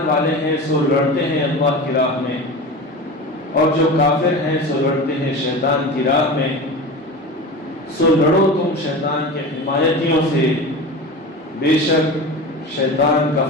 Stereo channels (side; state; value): both; normal; correlation 0.30